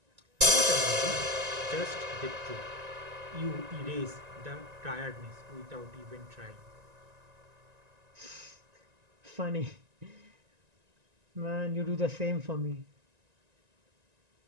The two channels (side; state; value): left; late; 1.9 ms